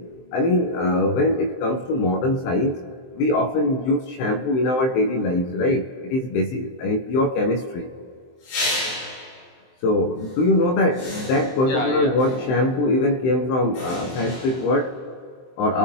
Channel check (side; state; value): right; late; 23 ms